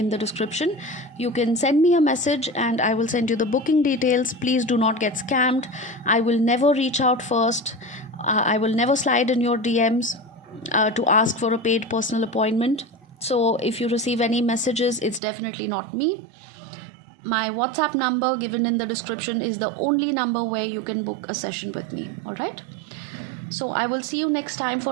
the description. You can send me a message and I will send you the booking details. Please do not get scammed. I will never reach out first. I will never slide in your DMs to ask for a paid personal appointment. So if you receive any messages, it's definitely not me. My WhatsApp number given in the description is the only number where you can book a session with me. All right. So I will see you next time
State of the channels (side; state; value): left; drops out; at 15.2 s